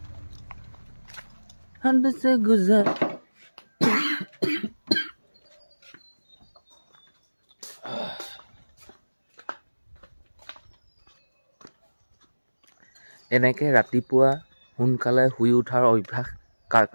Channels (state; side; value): inverted; both; correlation -1.00